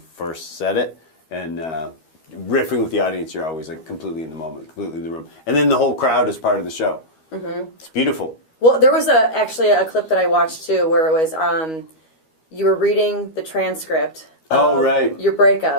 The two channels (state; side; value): late; right; 12 ms